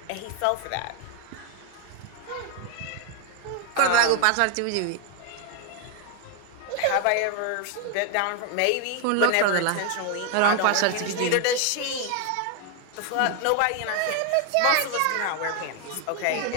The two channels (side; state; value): both; different; correlation 0.01